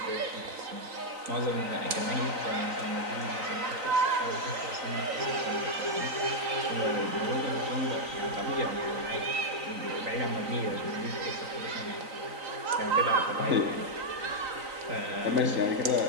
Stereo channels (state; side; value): late; left; 3.9 ms